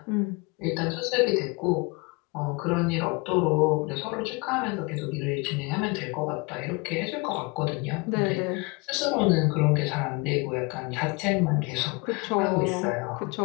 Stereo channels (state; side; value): quieter; right; 28.2 dB